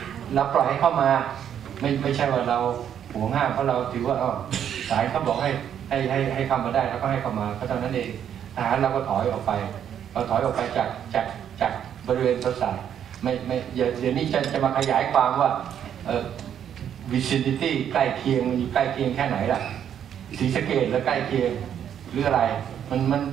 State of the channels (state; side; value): quieter; left; 9.3 dB